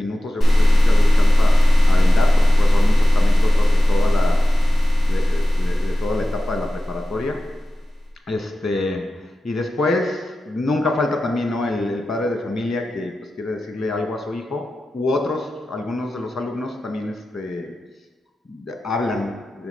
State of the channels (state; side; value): normal; both; correlation 0.95